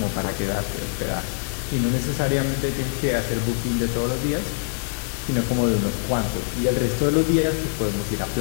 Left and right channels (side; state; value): right; silent; digital silence